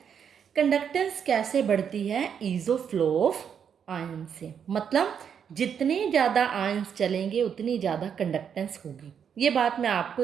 कंडक्टेंस कैसे बढ़ती है? Is of flow of ion से। मतलब जितने ज़्यादा आयन्स चलेंगे उतनी ज़्यादा कंडक्टेंस होगी। ये बात मैं आपको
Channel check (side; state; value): left; quieter; 7.7 dB